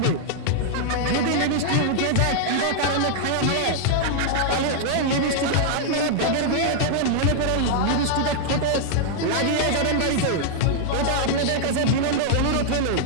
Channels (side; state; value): both; different; correlation -0.01